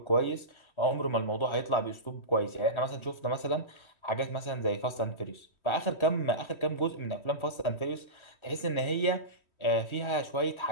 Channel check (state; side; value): late; right; 3.1 ms